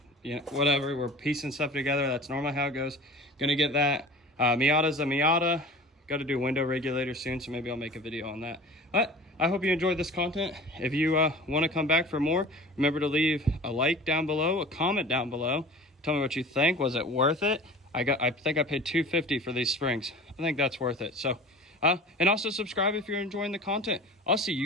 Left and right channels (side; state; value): both; normal; correlation 0.39